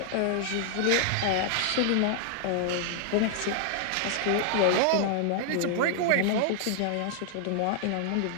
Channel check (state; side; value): different; both; correlation -0.01